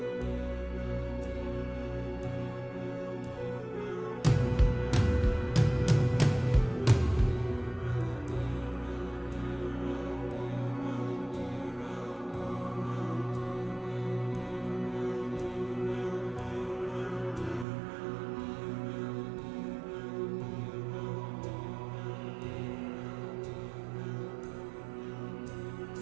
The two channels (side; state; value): left; drops out; at 17.7 s